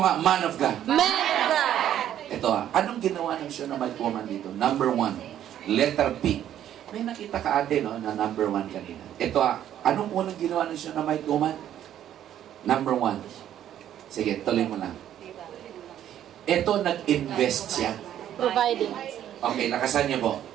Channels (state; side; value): quieter; left; 11.0 dB